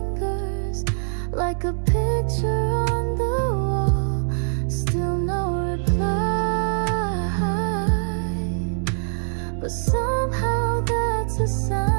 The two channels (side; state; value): left; silent; 63 dB below the other